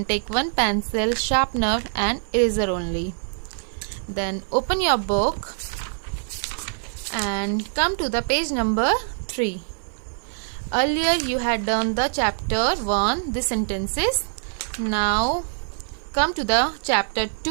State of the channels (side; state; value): left; silent; 56 dB below the other